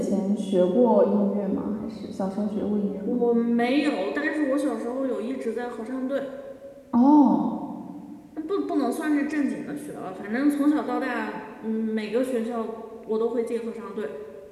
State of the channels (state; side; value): identical; both; correlation 1.00